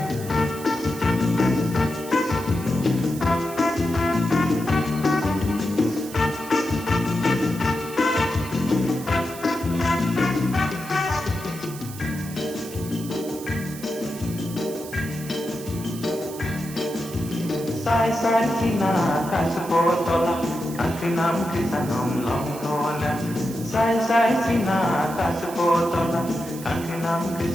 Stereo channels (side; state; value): right; noise; hiss, 15 dB below the sound